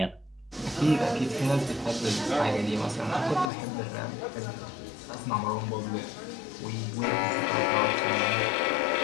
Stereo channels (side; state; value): right; drops out; at 3.5 s